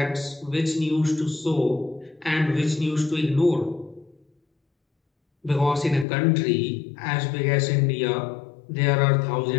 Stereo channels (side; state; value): right; drops out; at 6.1 s